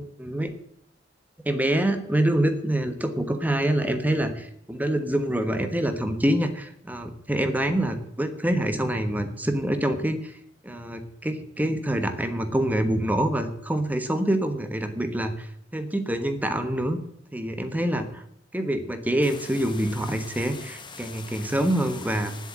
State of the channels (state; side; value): normal; both; correlation 0.85